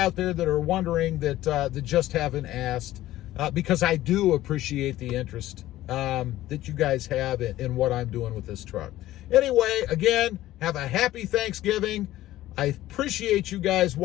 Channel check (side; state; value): right; quieter; 15.1 dB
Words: there that are wondering that just haven't asked, because I do appreciate the interest that you guys have in what I'm doing with this truck. Anyway, again, have a happy Thanksgiving. I appreciate you guys